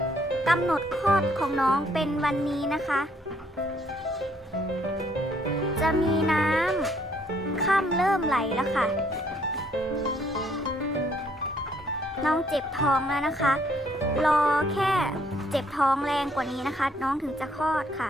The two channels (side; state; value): both; normal; correlation 0.67